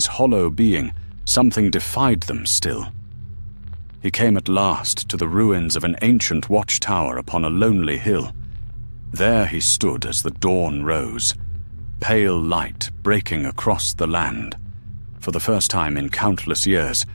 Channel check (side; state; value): both; inverted; correlation -1.00